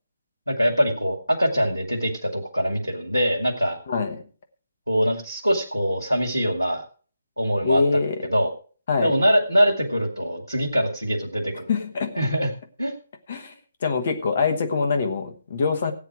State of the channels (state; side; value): inverted; both; correlation -0.88